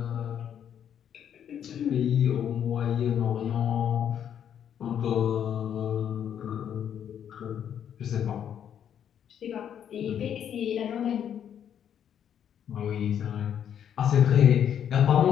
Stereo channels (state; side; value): quieter; right; 9.1 dB